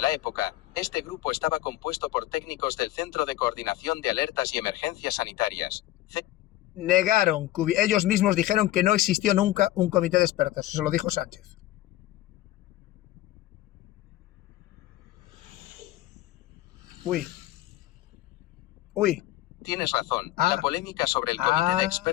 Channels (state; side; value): quieter; right; 15.4 dB